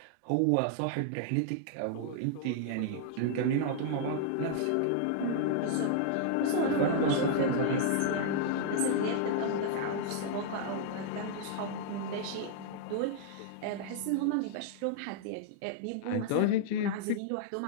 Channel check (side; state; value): both; different; correlation -0.01